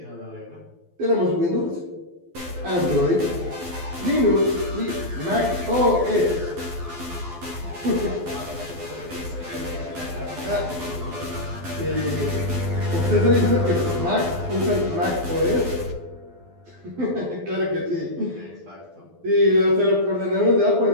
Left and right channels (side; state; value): left; late; 12 ms